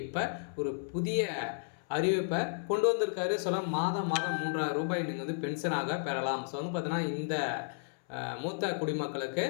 இப்ப ஒரு புதிய அறிவிப்ப கொண்டு வந்திருக்காரு. மாதம் மாதம் ரூ. 3000 நீங்க வந்து பென்ஷனாக பெறலாம். வந்து பார்த்தீங்கன்னா, இந்த மூத்த குடிமக்களுக்கு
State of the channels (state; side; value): silent; right; 56 dB below the other